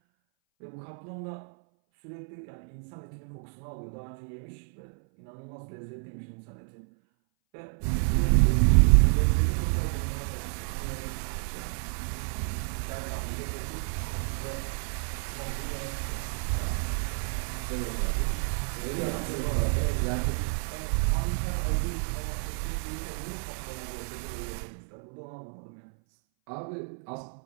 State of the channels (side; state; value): left; silent; 58 dB below the other